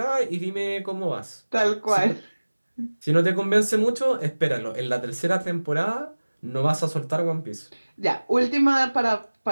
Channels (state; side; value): inverted; both; correlation -1.00